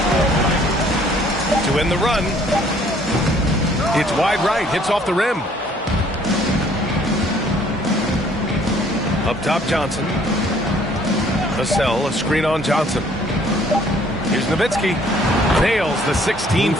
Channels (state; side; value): normal; both; correlation 0.60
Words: To end the run. It's wide right. Hits off the rim. Up top, Johnson. Vassell, a screen on Johnson. Here's Nowitzki. Nails the